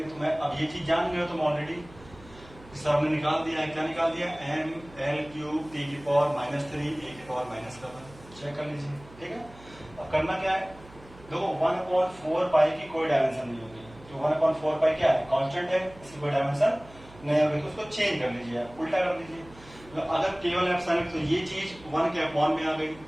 तो मैं अब ये चीज जान गए हो तुम ऑलरेडी, सर ने निकाल दिया है। क्या निकाल दिया, M/L³ T⁻³ A⁻⁻7। चेक कर लीजिए, ठीक है। अब करना क्या है, देखो 1/4π की कोई डायमेंशन नहीं होगी। तो 1/4π क्या है, कांस्टेंट है, इसकी कोई डायमेंशन नहीं होगी। तो उसको चेंज कर लीजिए, आप उल्टा कर लीजिए। तो अगर केवल एप्सिलॉन, तो ये चीज 1 के अपॉन में आ गई।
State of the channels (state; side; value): noise; right; hum, 22 dB below the sound